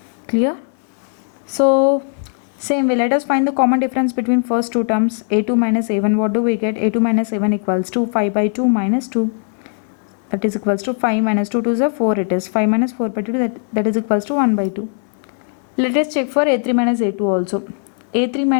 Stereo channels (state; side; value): silent; right; 62 dB below the other